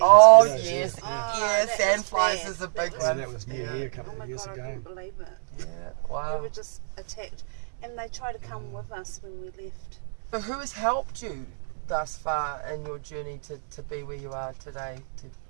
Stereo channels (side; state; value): left; silent; digital silence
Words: Oh Yeah, yes, yeah. yeah. that Sandflies was bad. is a That big was Yeah, one. that was near here a couple Oh of my years god, I ago. couldn't believe it. Yeah. We Wow. were just attacked, and they tried to come with us when we left. So who has helped you thus far in your journey to be where you are today?